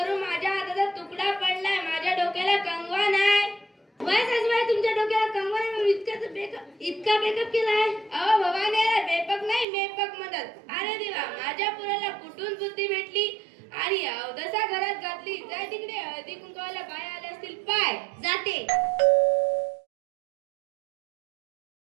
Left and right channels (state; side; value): drops out; left; at 9.7 s